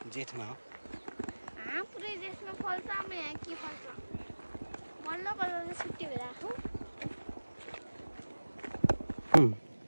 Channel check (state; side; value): inverted; both; correlation -1.00